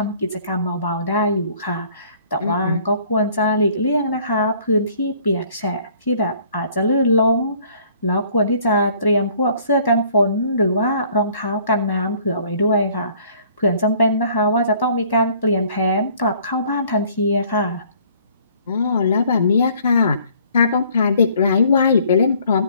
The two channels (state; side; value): inverted; both; correlation -0.58